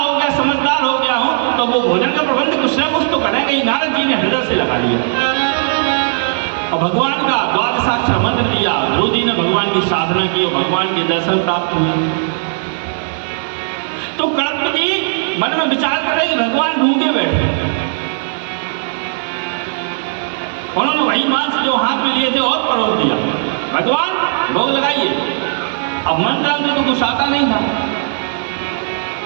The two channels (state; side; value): silent; left; digital silence